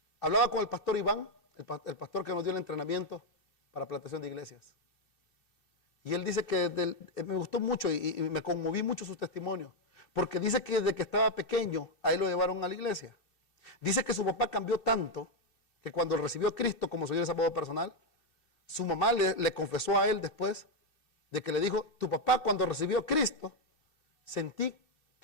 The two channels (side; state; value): right; late; 2.7 ms